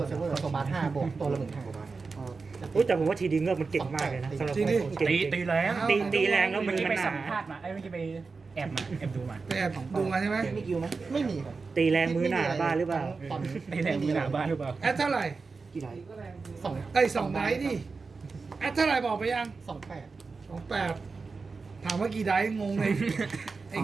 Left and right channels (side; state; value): left; quieter; 4.4 dB